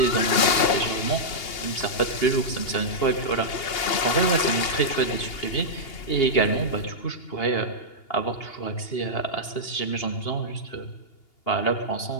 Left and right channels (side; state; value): right; late; 2.8 ms